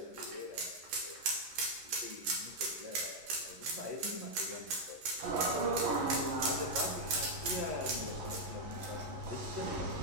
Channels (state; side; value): late; left; 11 ms